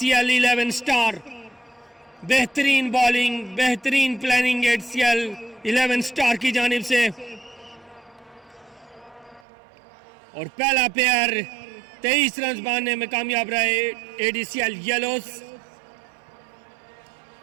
11 स्टार, बेहतरीन बॉलिंग, बेहतरीन प्लानिंग ACL 11 स्टार की जानिब से। और पहला प्लेयर 23 रन बनाने में कामयाब रहे ADCL येलोज।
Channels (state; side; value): drops out; left; at 9.5 s